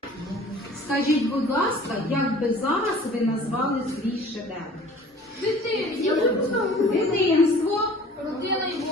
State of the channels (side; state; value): both; normal; correlation 0.48